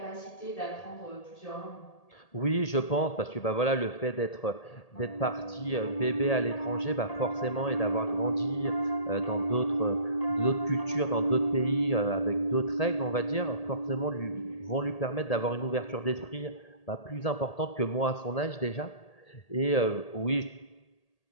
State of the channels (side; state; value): right; late; 1.8 ms